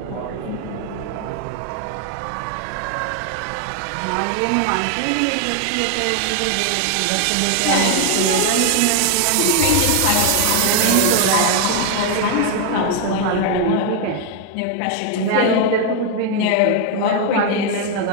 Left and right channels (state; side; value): different; both; correlation 0.01